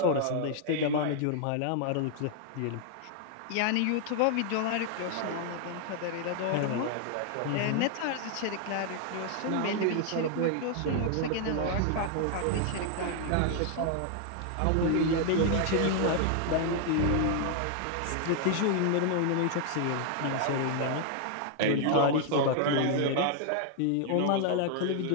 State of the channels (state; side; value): different; both; correlation 0.00